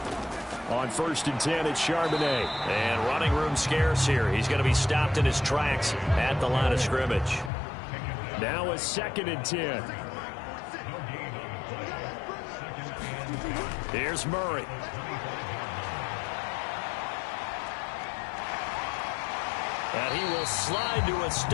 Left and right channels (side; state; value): right; drops out; at 7.5 s